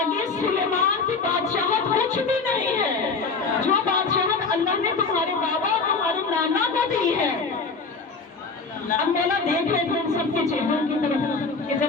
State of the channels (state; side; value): quieter; right; 4.5 dB